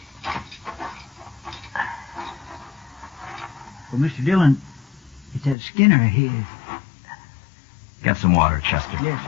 Well, Mr. Dillon, it's that Skinner of his. Get some water, Chester. Yes,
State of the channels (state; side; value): drops out; right; at 5.6 s